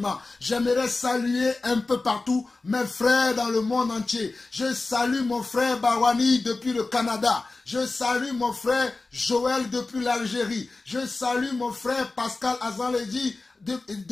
j'aimerais saluer un peu partout mes frères dans le monde entier. Je salue mon frère Barwani depuis le Canada. Je salue mon frère Joël depuis l'Algérie. Je salue mon frère Pascal Azanledi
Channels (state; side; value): quieter; right; 3.5 dB